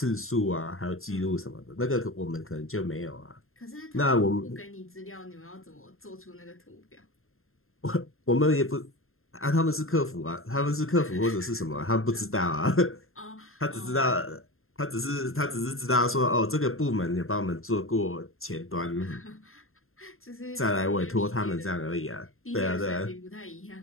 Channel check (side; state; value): right; late; 0.61 ms